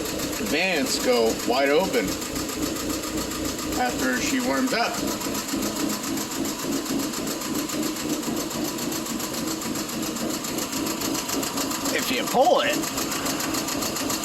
Advance go wide open after she warms up. If you pull them,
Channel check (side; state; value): both; identical; correlation 1.00